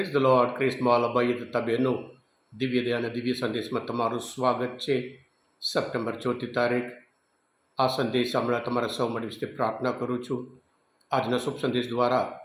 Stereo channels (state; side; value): identical; both; correlation 1.00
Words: the lord. ક્રિસ્મોલ ભાઈ તથા બહેનો, દિવ્ય દયા અને દિવ્ય સંદેશમાં તમારું સ્વાગત છે. સપ્ટેમ્બર 4 તારીખ. આ સંદેશ હમણાં તમારા સૌ મળી વિશે પ્રાર્થના કરું છું. આજના શુભ સંદેશ દ્વારા